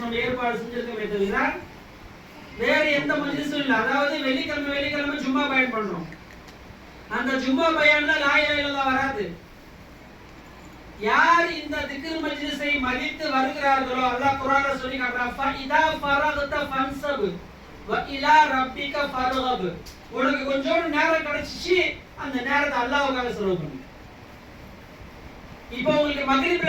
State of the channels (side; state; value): both; identical; correlation 1.00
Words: நம்ம ஏற்பாடு செஞ்சிருக்கோமே தவிர வேற எந்த மஜ்லிஸும் இல்லை. அதாவது வெள்ளிக்கிழமை ஜும்மா பயான் பண்றோம். அந்த ஜும்மா பயான்ல லா இலாஹ இல்லல்லாஹ் வராது. யார் இந்த திக்ர் மஜ்லிஸை மதித்து வருகிறார்களோ அல்லாஹ் குர்ஆன்ல சொல்லி காட்டுறான், ஃபஇதா ஃபரகத ஃபன்சப் வ இலா ரப்பிக ஃபர்கப். உனக்கு கொஞ்சம் நேரம் கிடைச்சிச்சு, அந்த நேரத்தை அல்லாஹ்வுக்காக செலவு பண்ணு. இப்போ உங்களுக்கு